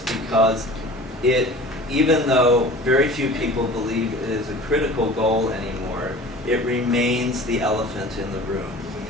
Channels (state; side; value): normal; both; correlation 0.41